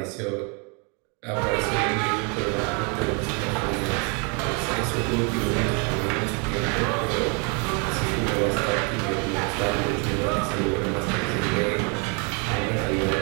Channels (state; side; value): quieter; left; 35.2 dB